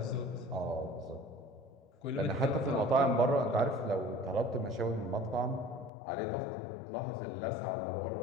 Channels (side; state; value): right; drops out; at 5.9 s